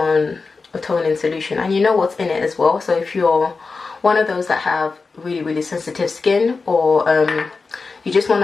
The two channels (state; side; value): quieter; right; 4.3 dB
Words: a toning solution. And you know what's in it as well. So if you're one of those that have really sensitive skin, or you just want